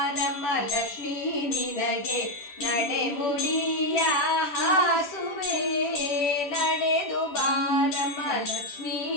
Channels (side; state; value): right; late; 10 ms